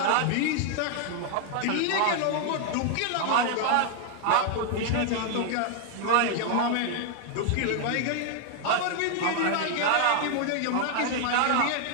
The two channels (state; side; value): different; both; correlation 0.00